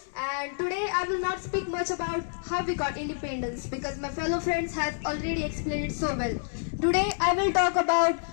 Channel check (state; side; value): silent; right; 59 dB below the other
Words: and today I will not speak much about how we got independence because my fellow friends have already explained it so well. Today I will talk about